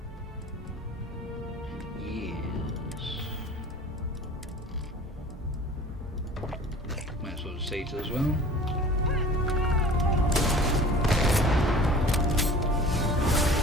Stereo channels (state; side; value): normal; both; correlation 0.44